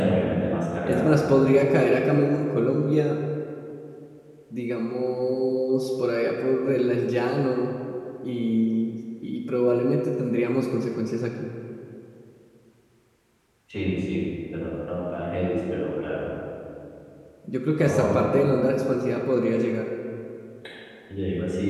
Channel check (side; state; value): both; identical; correlation 1.00